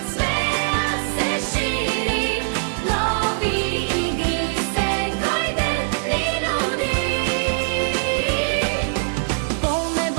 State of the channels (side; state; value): left; silent; digital silence